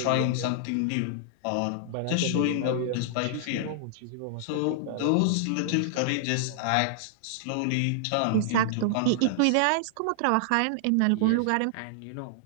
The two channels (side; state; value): both; different; correlation -0.01